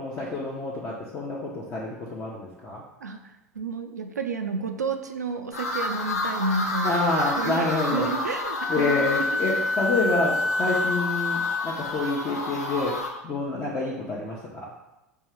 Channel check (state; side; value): normal; both; correlation 0.35